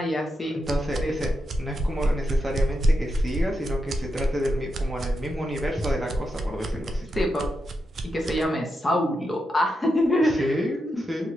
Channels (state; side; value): normal; both; correlation 0.86